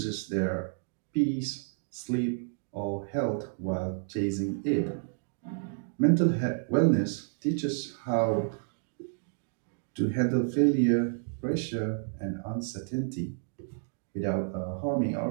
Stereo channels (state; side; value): silent; left; digital silence